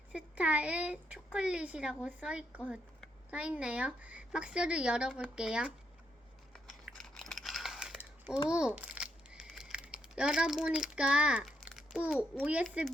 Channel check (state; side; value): normal; both; correlation 0.78